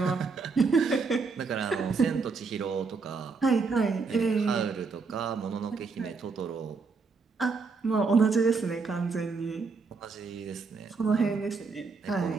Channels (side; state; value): left; quieter; 4.6 dB